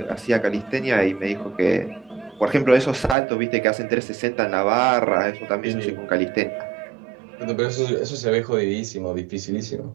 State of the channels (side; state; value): left; drops out; at 3.2 s